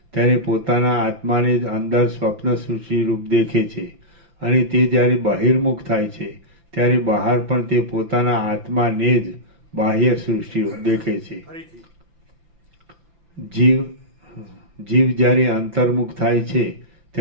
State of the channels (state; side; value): late; left; 5.9 ms